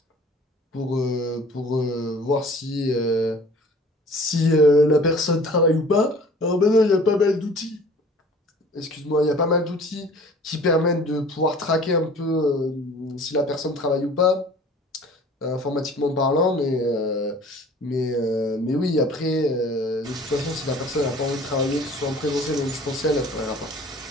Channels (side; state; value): both; normal; correlation 0.48